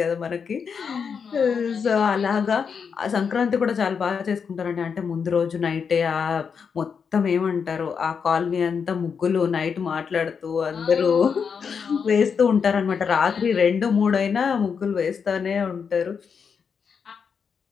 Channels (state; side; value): quieter; right; 6.3 dB